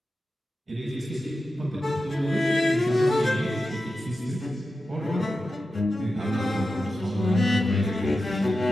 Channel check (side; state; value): both; normal; correlation 0.92